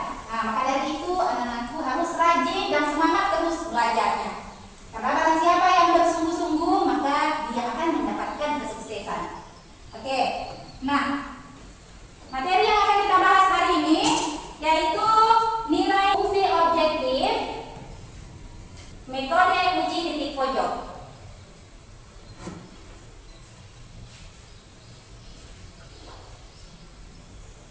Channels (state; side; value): identical; both; correlation 1.00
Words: Nah, maka dari itu anak-anakku harus rajin dan semangat terus belajarnya. Karena barang siapa yang bersungguh-sungguh, maka dia akan mendapatkan kesuksesan. Oke, nah materi yang akan kita bahas hari ini yaitu nilai fungsi objektif, metode uji titik pojok.